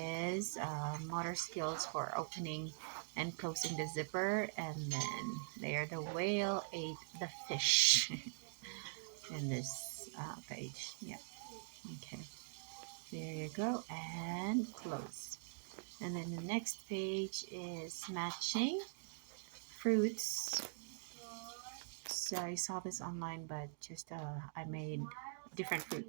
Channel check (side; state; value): left; silent; digital silence